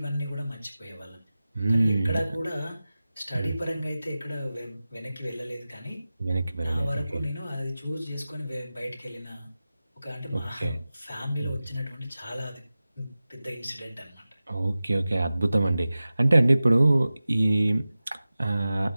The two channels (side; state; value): both; inverted; correlation -0.96